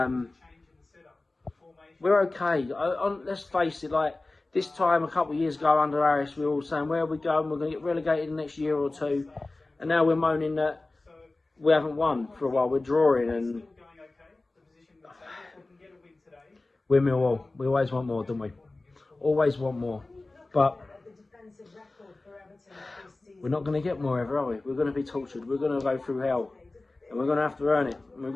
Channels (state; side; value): quieter; right; 3.1 dB